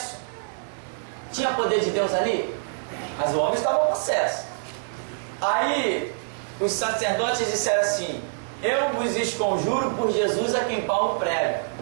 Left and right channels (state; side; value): silent; left; digital silence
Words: Tinha poder de Deus ali? Mas o homem estava possesso. Aí os sacerdotes disseram assim, eu vos esconjuro por Jesus a quem Paulo prega.